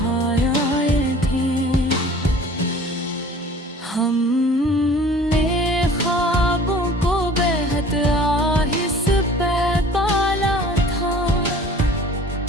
थे। हमने ख्वाबों को बेहद आहिस्ते पाला था,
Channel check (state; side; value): normal; both; correlation 0.47